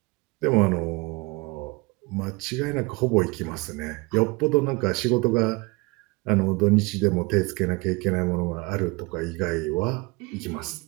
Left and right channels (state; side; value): quieter; left; 25.7 dB